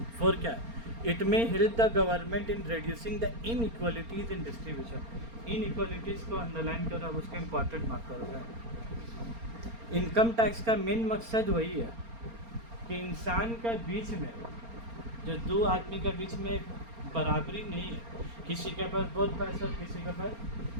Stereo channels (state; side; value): late; left; 4.3 ms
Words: 4 क्या है, it may help the government in reducing the inequalities in distribution. Inequalities को अंडरलाइन करो, अब उसके इम्पॉर्टेंट मार्क करोगे। इनकम टैक्स का मेन मकसद वही है कि इंसान का बीच में, जो 2 आदमी का बीच में बराबरी नहीं है, किसी के पास बहुत पैसा किसी के पास